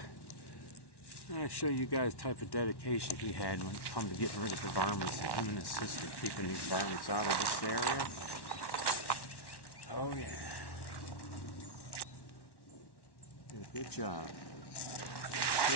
show you guys the type of dedication he had when it come to getting rid of the varmints. Him and his sister keeping these varmints out of this area. Oh yeah. Did a good job.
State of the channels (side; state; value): right; late; 1.1 ms